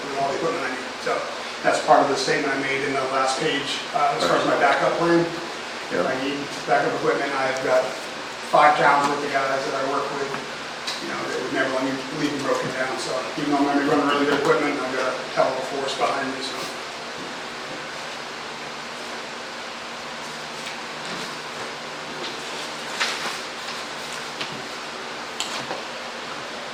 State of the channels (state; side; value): identical; both; correlation 1.00